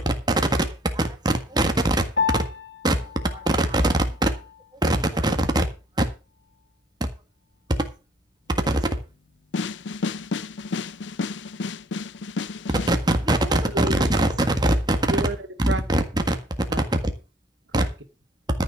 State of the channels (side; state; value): both; normal; correlation 0.60